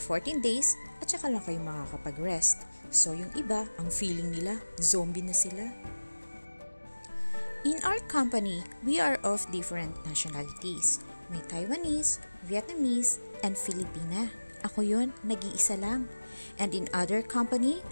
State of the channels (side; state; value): both; inverted; correlation -1.00